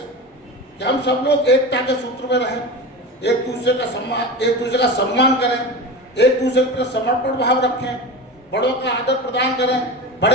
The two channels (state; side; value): normal; both; correlation 0.27